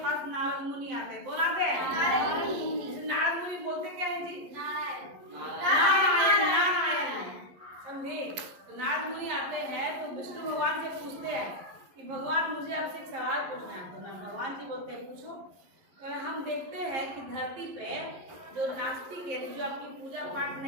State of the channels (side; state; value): left; late; 11 ms